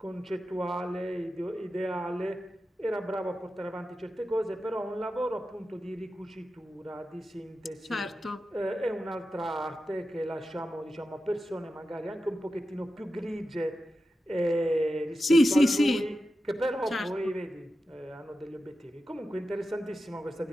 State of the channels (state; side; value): normal; both; correlation 0.91